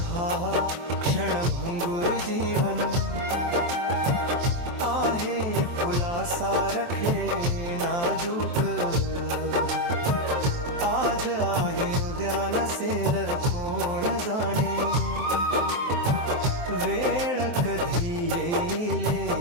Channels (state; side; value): late; left; 23 ms